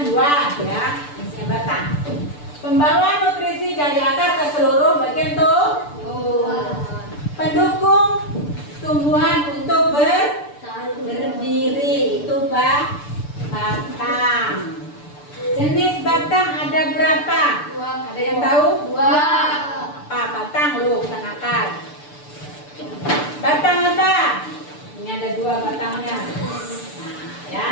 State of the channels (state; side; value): late; right; 6.8 ms